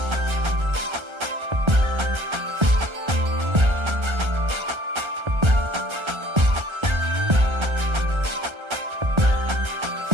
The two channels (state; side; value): late; left; 1.3 ms